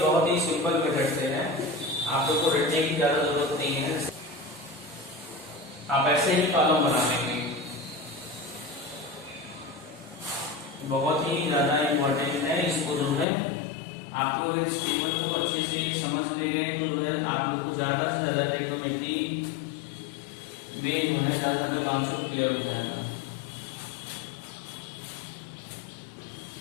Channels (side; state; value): right; drops out; at 13.2 s